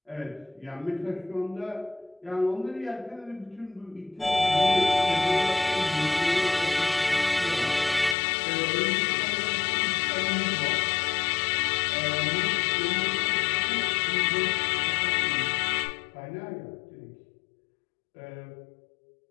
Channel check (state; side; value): drops out; right; at 8.2 s